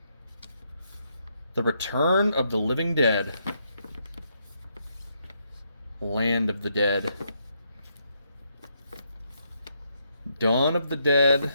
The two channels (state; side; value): inverted; both; correlation -0.77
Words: The Return of the Living Dead. Land of the Dead. Dawn of the Dead.